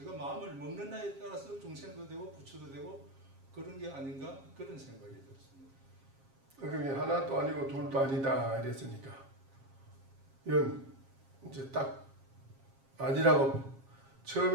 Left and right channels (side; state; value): left; late; 7.4 ms